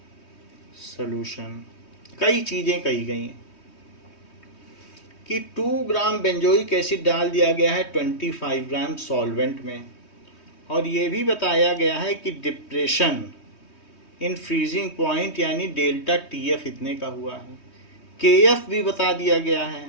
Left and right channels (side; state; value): right; late; 3.2 ms